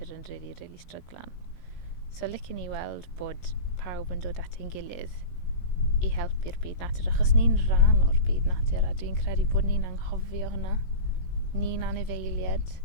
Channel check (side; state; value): right; late; 16 ms